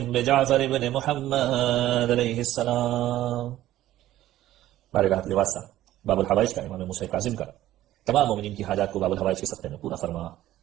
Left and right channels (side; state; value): left; quieter; 14.2 dB